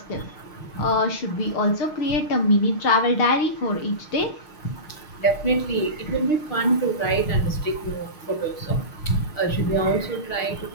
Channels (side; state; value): right; late; 6.5 ms